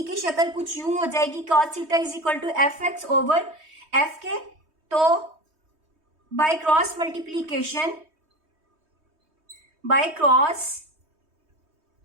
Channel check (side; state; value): left; late; 3.2 ms